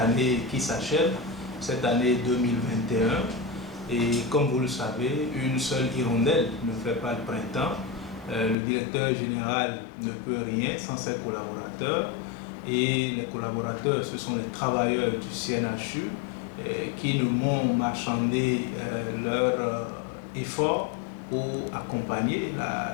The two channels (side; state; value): right; drops out; at 8.6 s